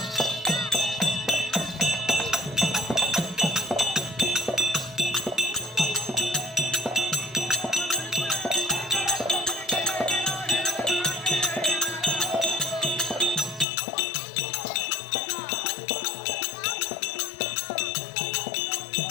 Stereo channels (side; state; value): right; drops out; at 13.7 s